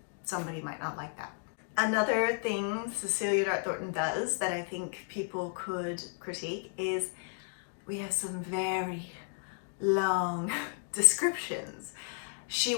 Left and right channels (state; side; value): silent; right; 56 dB below the other